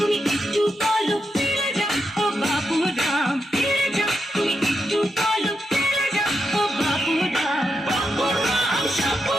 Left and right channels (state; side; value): normal; both; correlation 0.84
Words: একটু পলক ফেলে যাও ও বাবু রাম ফিরে যাও তুমি একটু পলক ফেলে যাও ও বাবু রাম